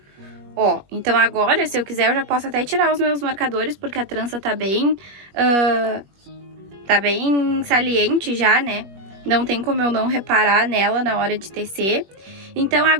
Ó, então agora, se eu quiser, eu já posso até tirar os meus marcadores, porque a trança tá bem saliente já, né? Não tem como eu não reparar nela na hora de tecer. Então,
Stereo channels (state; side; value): late; left; 21 ms